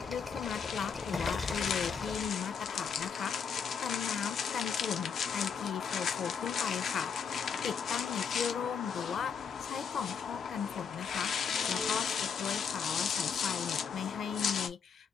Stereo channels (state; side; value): quieter; right; 6.6 dB